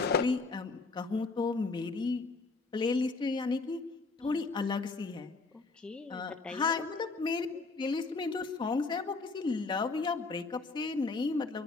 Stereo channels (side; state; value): right; quieter; 3.9 dB